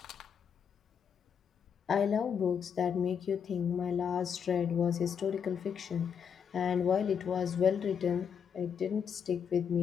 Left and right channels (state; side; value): quieter; right; 7.3 dB